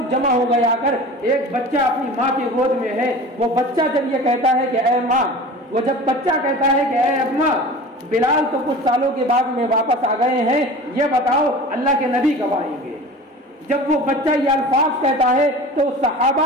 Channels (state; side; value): normal; both; correlation 0.37